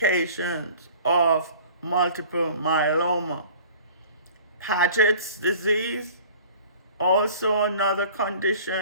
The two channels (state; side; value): inverted; both; correlation -0.46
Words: of multiple myeloma. Paget's disease, also another